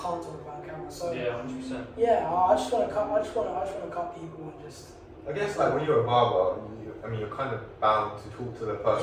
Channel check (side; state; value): both; identical; correlation 1.00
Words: talk about on camera. So yeah, 100%. Yeah, I just want to cut. I just want to cut people and just. I guess like when you're a barber, you're kind of bound to talk to the